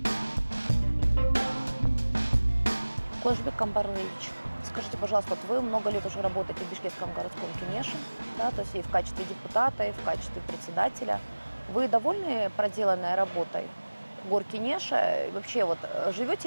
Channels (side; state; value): both; inverted; correlation -1.00